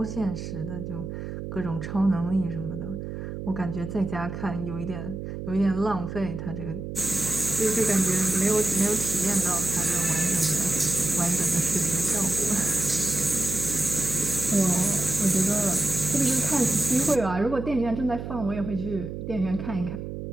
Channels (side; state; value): right; noise; hum, 7 dB below the sound